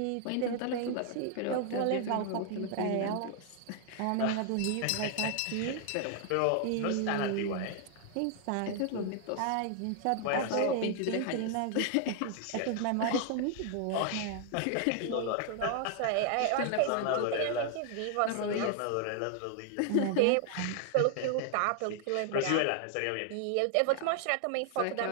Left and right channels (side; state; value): both; different; correlation 0.00